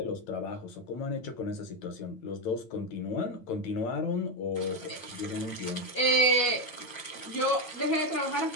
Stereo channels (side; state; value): right; late; 9.1 ms